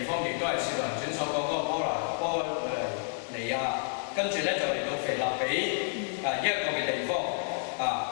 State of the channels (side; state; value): right; silent; digital silence